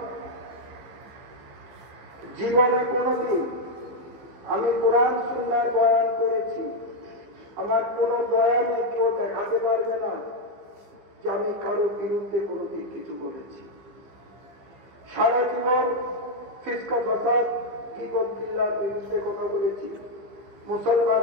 জীবনে কোনোদিন আমি কোরআন সুন্নাহর বয়ান করেছি, আমার কোনো বয়ানে কেউ দেখাতে পারবে না যে আমি কারো বিরুদ্ধে কোনোদিন কিছু বলেছি। সারা জীবন ফিসকা ফাসাদ গীবত বিল্লাহর বিরুদ্ধে কথা বলেছি,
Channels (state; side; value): late; left; 15 ms